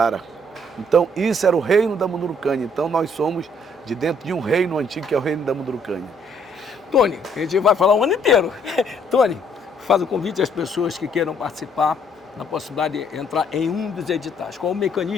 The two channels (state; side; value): normal; both; correlation 0.66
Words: Então, isso era o reino da Mundurucânia. Então, nós somos de dentro de um reino antigo, que é o reino da Mundurucânia. Tony, a gente vai falar o ano inteiro. Tony, faz o convite às pessoas que queiram participar na possibilidade de entrar em um dos editais. Qual o